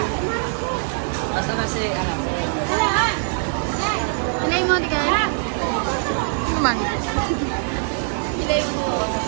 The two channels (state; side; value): silent; left; 57 dB below the other